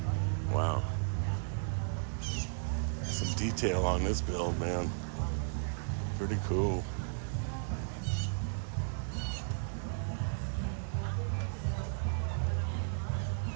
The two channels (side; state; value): left; silent; digital silence